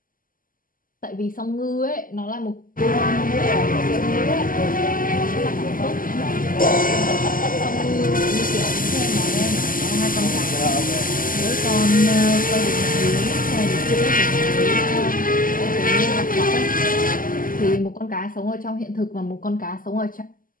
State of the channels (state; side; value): late; right; 0.41 ms